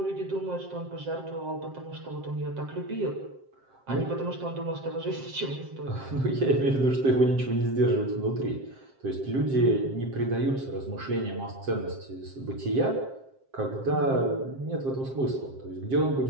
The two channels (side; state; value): left; late; 7.6 ms